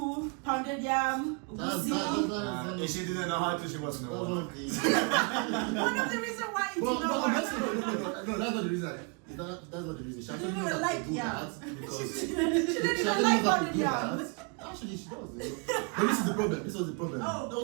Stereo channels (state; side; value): quieter; left; 34.0 dB